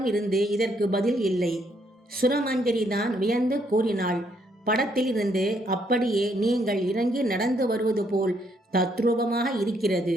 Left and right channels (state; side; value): normal; both; correlation 0.72